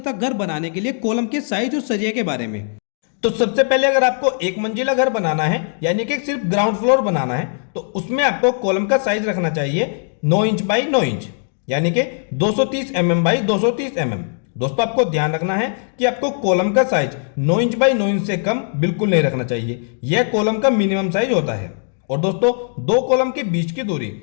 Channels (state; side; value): silent; right; 64 dB below the other